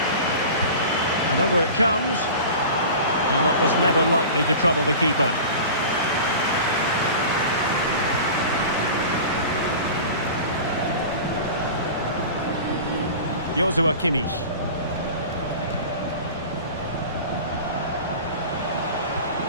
And over it comes. Now that was never likely to trouble the keeper. Joshua Kimmich.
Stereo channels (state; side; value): inverted; both; correlation -0.36